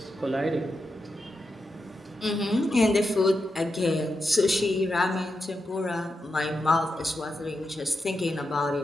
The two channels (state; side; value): normal; both; correlation 0.87